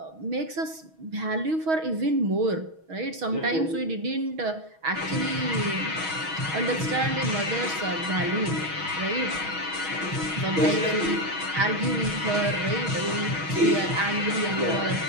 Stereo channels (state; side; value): late; left; 6.3 ms